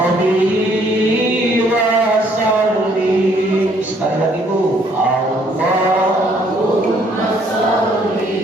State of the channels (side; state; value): both; normal; correlation 0.65